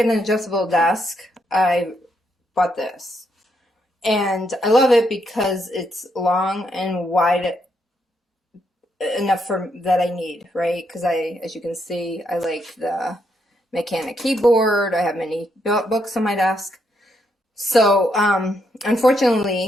an adjustable desk, I bought this. And I love it because it's long and wide enough for that I need, right? Because as you can see, I like the mechanic keyboard. I have many books on my desk. So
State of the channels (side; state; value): both; normal; correlation 0.77